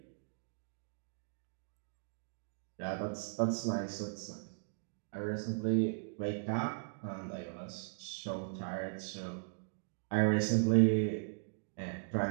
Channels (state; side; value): silent; left; digital silence